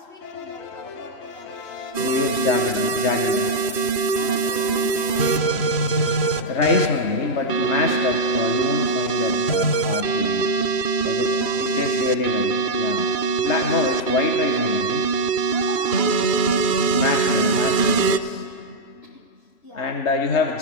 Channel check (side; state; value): right; late; 3.1 ms